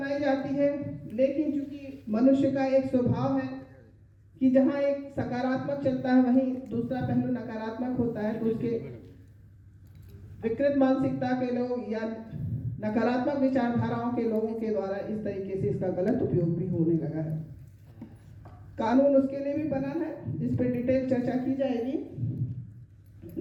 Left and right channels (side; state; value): both; identical; correlation 1.00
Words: जाती है, लेकिन चूंकि मनुष्य का एक स्वभाव है कि जहां एक सकारात्मक चलता है वहीं दूसरा पहलू नकारात्मक होता है, तो उसके विकृत मानसिकता के लोग या नकारात्मक विचारधाराओं के लोगों के द्वारा इस तरीके से इसका गलत उपयोग भी होने लगा है। कानून उसके लिए भी बना है, इस पर डिटेल चर्चा की जाएगी